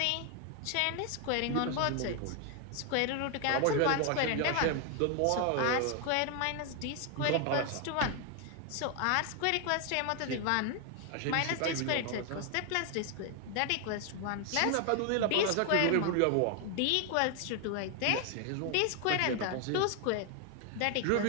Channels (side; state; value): both; different; correlation 0.01